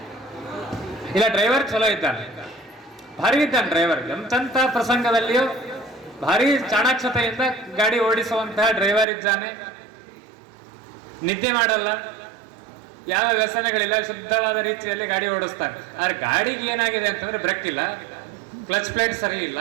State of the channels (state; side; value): drops out; left; at 9.1 s